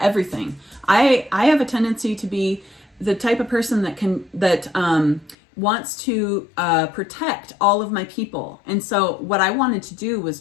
everything. I have a tendency to be the type of person that wants to protect all of my people. And so what I wanted to do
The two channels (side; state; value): right; drops out; at 5.4 s